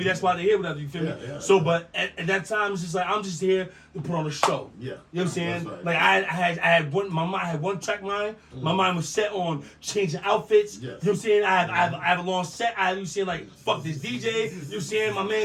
that's why they hear whatever, you feel me? Yeah. So, but at that time, it's just like, I'm just here to put on a show. Yeah. You know what I'm saying? That's right. Like, I had one, my mind had one track mind. My mind was set on changing outfits. Yes. You know what I'm saying? I have a long set. You know what I'm saying? Like, fuck this DJ. You know what I'm saying? My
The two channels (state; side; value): identical; both; correlation 1.00